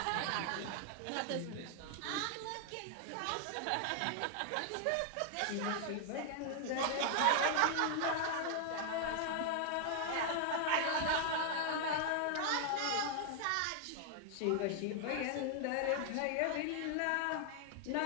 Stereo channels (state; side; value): different; both; correlation 0.00